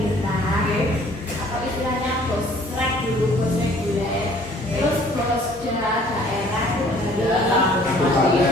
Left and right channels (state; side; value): normal; both; correlation 0.56